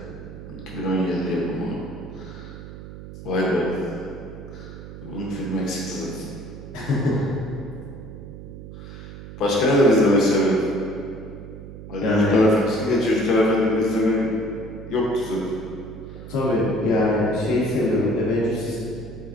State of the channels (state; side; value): noise; right; hum, 13 dB below the sound